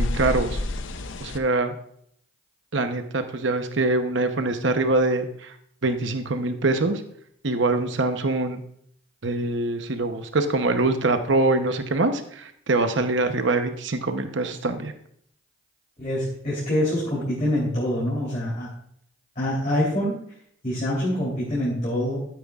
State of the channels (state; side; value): normal; both; correlation 0.24